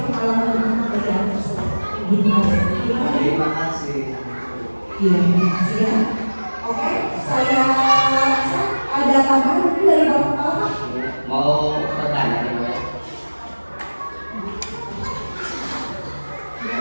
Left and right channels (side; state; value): both; inverted; correlation -1.00